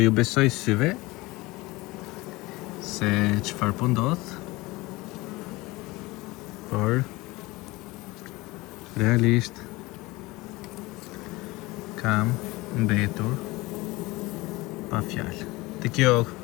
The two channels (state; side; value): quieter; right; 21.6 dB